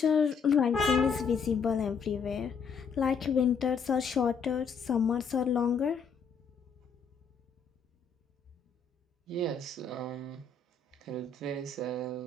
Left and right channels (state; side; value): quieter; right; 5.5 dB